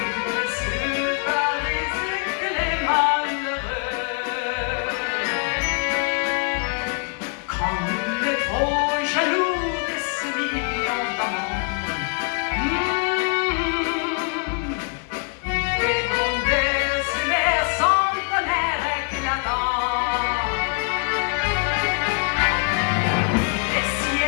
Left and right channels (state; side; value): quieter; right; 39.8 dB